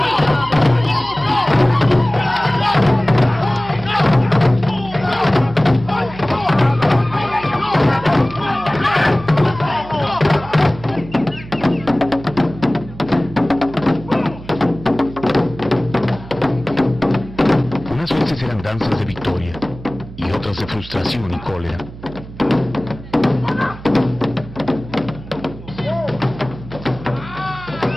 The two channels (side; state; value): right; noise; hum, 15 dB below the sound